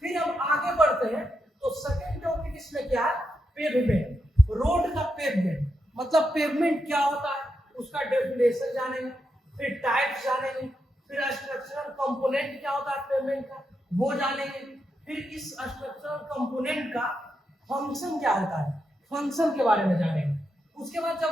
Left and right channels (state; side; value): normal; both; correlation 0.84